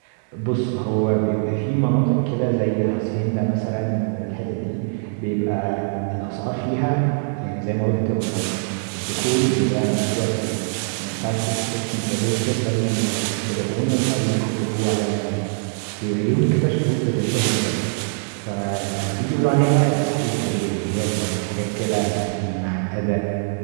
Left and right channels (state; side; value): silent; left; 64 dB below the other